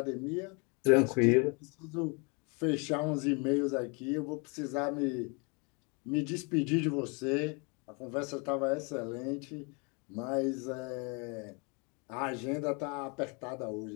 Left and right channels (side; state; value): right; quieter; 32.3 dB